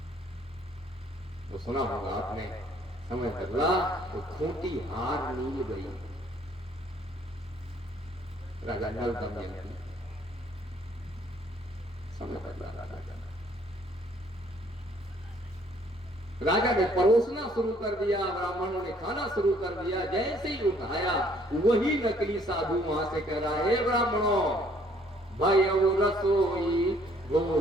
वो सुना होगा आपने, समय बदला तो खूंटी हार नील गई। राजा नल दमयंती, समय बदला राजा ने परोसना शुरू कर दिया, ब्राह्मणों ने खाना शुरू कर दिया। जैसे ही उठाया वही नकली साधु वहां से कह रहा है ब्राह्मणों भयउ रसोई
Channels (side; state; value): both; normal; correlation 0.62